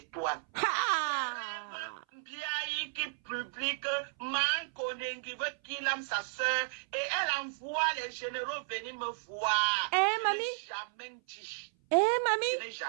Ha! Rêve Mbiaye. public, Man Konengi veut qu'il aime sa soeur et elle envoie les généraux venir me voir. Mamie? Je n'ai jamais dit. Mamie? Je n'ai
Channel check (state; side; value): silent; left; 55 dB below the other